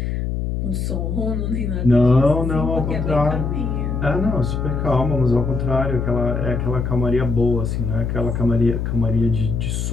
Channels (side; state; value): left; noise; hum, 2 dB below the sound